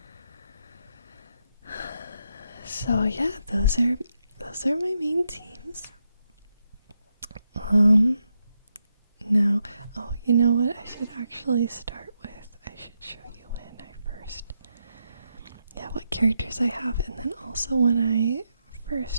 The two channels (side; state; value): both; inverted; correlation -0.83